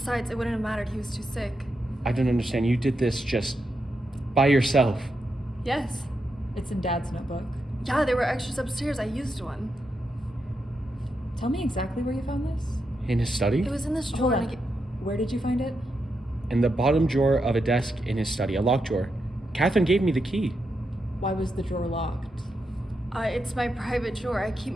it wouldn't have mattered. He was too sick. I don't understand. You did this just by yourself. Yes. It's in Dad's notebook. Yeah, there were extras upstairs. I used one. Tell me exactly where you found this. In his study? It was in this Hold drawer. on. Where did you find it? In the bottom drawer of a desk in his study, a locked drawer. Catherine gave me the key. Why was the drawer locked? It's my private drawer. I keep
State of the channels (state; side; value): normal; both; correlation 0.85